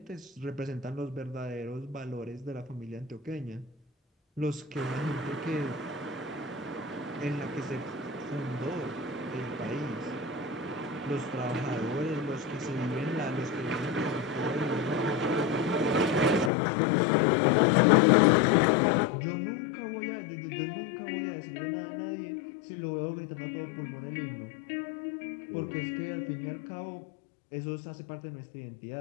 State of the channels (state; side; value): drops out; right; at 16.5 s